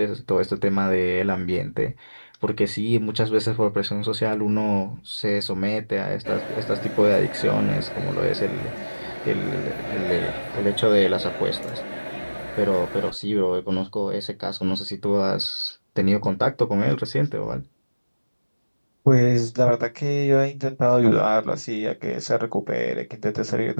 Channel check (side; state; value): both; inverted; correlation -1.00